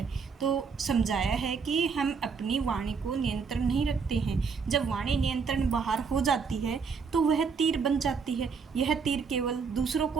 तो समझाया है कि हम अपनी वाणी को नियंत्रण नहीं रखते हैं। जब वाणी नियंत्रण बाहर हो जाती है तो वह तीर बन जाती है। यह तीर केवल दूसरों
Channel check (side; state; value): left; quieter; 5.5 dB